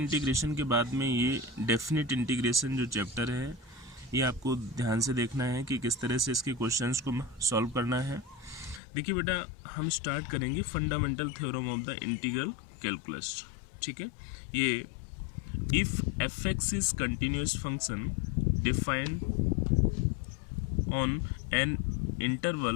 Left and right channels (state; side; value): drops out; right; at 8.8 s